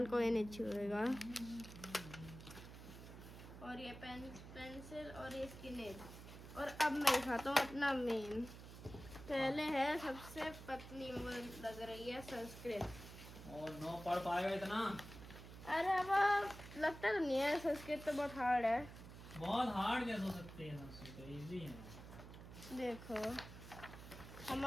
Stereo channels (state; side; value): noise; right; hum, 13 dB below the sound